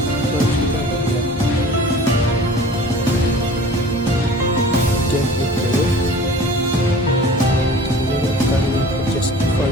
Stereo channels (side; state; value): both; normal; correlation 0.44